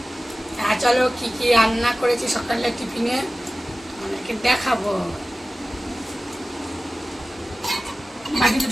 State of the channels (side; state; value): both; normal; correlation 0.97